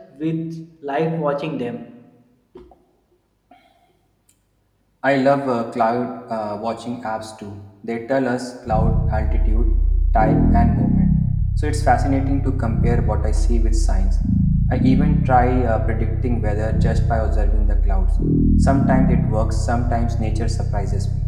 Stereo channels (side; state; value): both; identical; correlation 1.00